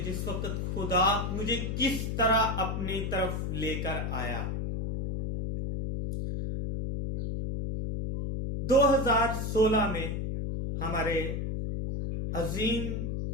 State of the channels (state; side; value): noise; left; hum, 2 dB below the sound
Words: जिस वक्त खुदा मुझे किस तरह अपनी तरफ लेकर आया। 2016 में हमारे अजीम